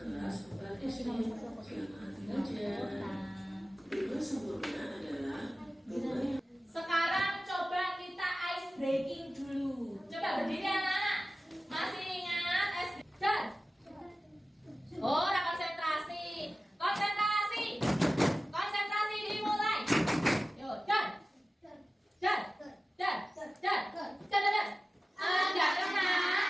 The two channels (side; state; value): both; normal; correlation 0.96